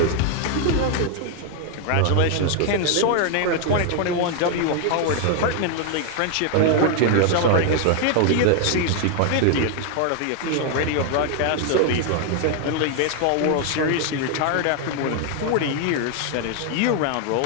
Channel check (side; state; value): both; different; correlation 0.00